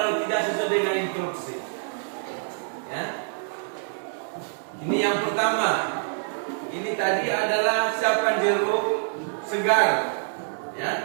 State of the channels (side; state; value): left; silent; digital silence